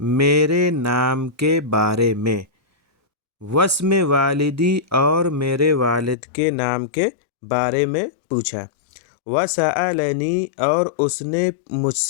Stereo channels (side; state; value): right; drops out; at 6.2 s